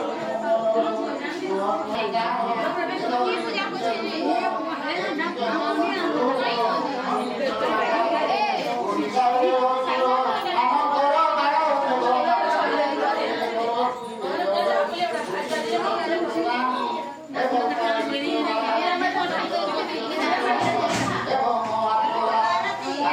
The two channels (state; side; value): identical; both; correlation 1.00